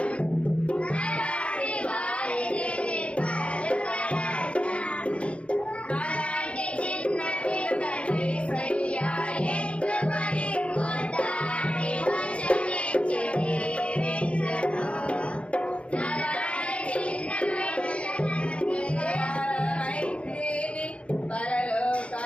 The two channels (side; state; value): right; late; 0.061 ms